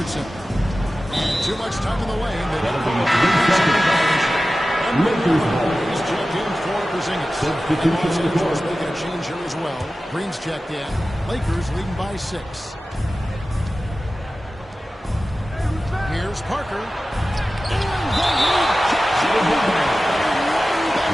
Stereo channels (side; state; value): both; normal; correlation 0.95